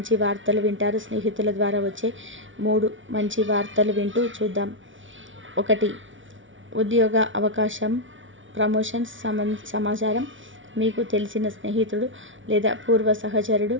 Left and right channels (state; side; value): late; left; 0.56 ms